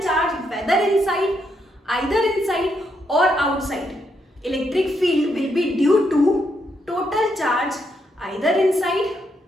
charge whether inside, either inside और outside, electric field will be due to total charge either inside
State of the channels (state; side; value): normal; both; correlation 0.78